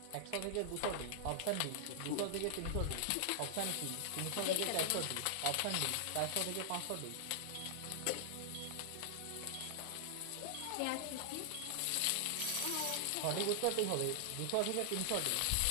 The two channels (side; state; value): both; different; correlation -0.01